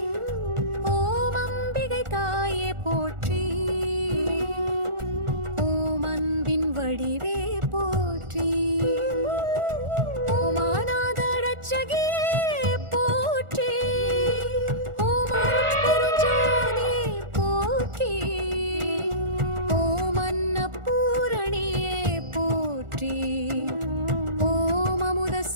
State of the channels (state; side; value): late; left; 1.4 ms